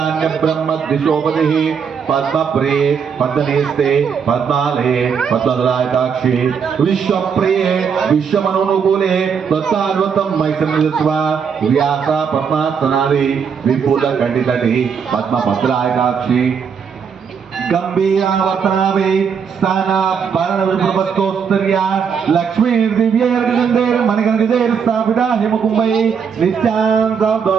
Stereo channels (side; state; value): left; quieter; 6.7 dB